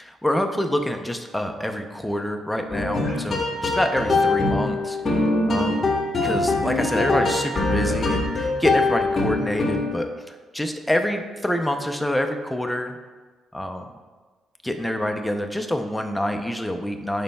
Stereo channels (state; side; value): normal; both; correlation 0.84